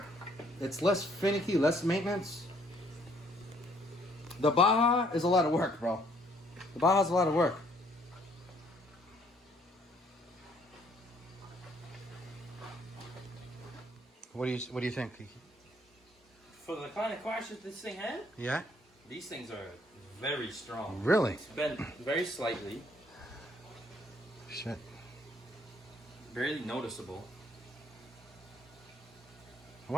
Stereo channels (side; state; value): both; normal; correlation 0.64